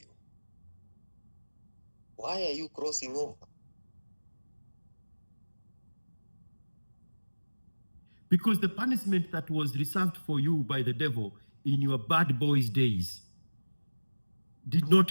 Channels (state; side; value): inverted; both; correlation -1.00